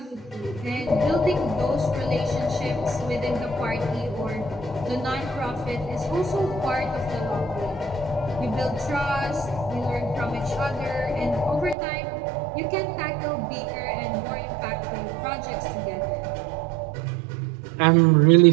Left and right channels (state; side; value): drops out; left; at 11.8 s